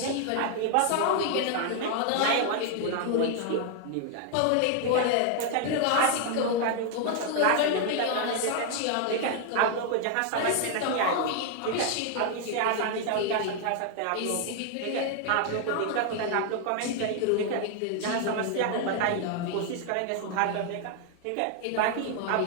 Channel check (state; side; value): different; both; correlation 0.00